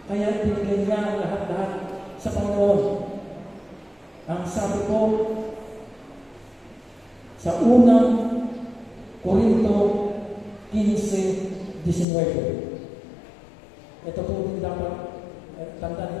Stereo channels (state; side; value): drops out; right; at 12.1 s